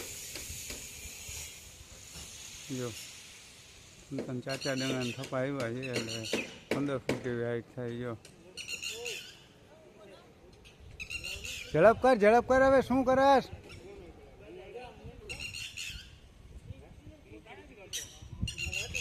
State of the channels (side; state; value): both; identical; correlation 1.00